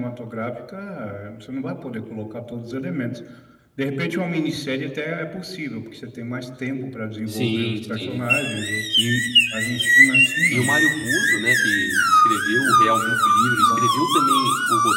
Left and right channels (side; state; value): both; identical; correlation 1.00